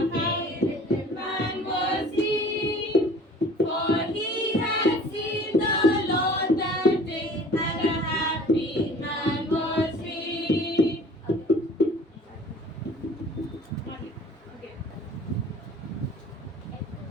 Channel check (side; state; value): both; normal; correlation 0.47